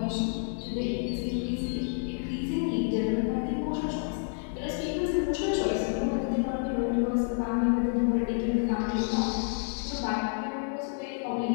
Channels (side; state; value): right; silent; digital silence